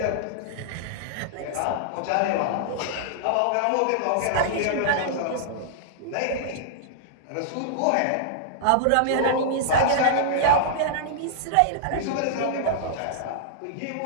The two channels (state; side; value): different; both; correlation -0.01